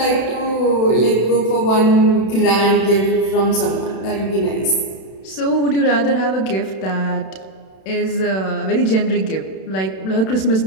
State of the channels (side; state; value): right; late; 31 ms